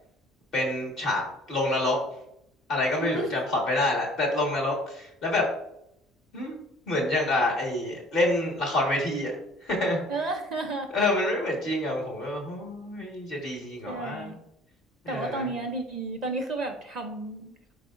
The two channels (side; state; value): both; normal; correlation 0.51